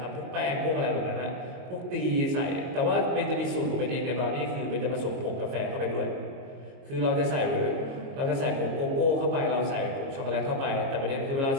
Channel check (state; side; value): late; left; 22 ms